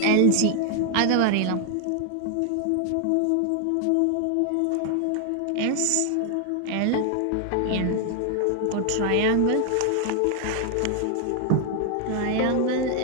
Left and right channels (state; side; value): different; both; correlation 0.00